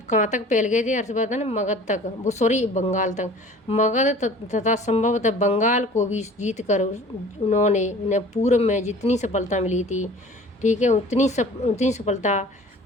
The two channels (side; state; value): both; normal; correlation 0.46